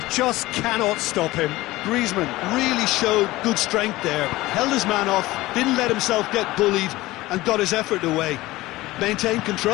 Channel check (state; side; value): quieter; right; 18.4 dB